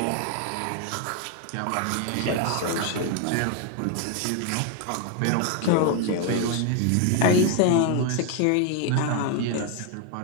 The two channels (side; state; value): both; different; correlation 0.01